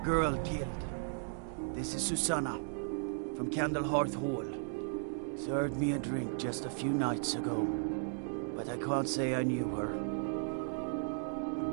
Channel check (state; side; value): silent; left; digital silence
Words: killed. This is Susanna, from Candlehearth Hall. Served me a drink just a few nights ago, but I can't say I knew her.